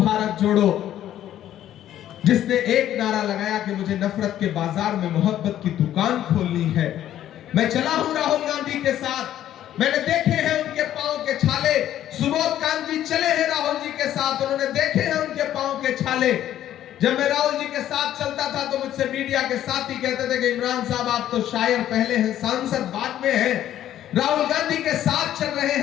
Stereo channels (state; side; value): quieter; right; 11.9 dB